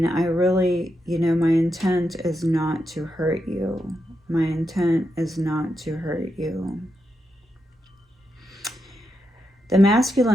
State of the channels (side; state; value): both; normal; correlation 0.85